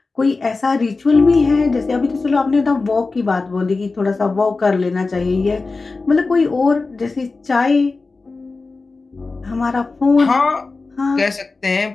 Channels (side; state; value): right; quieter; 3.8 dB